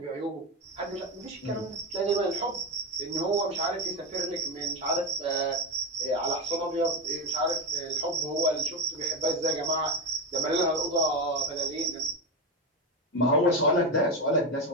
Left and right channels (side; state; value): both; normal; correlation 0.15